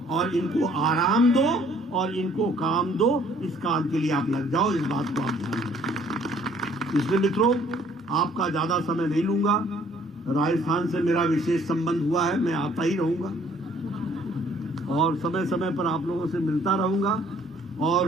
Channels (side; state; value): both; normal; correlation 0.60